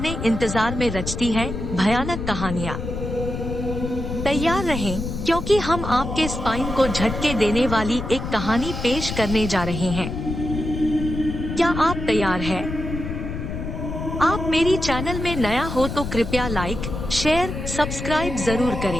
इंतजार में रचती है भयानक कहानियां। तैयार रहें, क्योंकि हम आपके स्पाइन को झटके देने वाली एक कहानी पेश करने जा रहे हैं। क्या आप तैयार हैं? आप मेरी चैनल में नया हो तो कृपया लाइक, शेयर, सब्सक्राइब जरूर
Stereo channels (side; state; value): left; noise; rumble, 5 dB below the sound